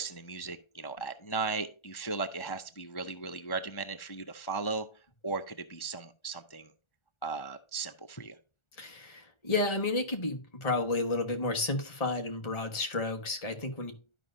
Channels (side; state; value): right; late; 1.4 ms